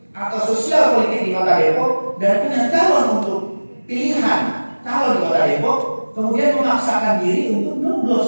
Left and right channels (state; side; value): inverted; both; correlation -1.00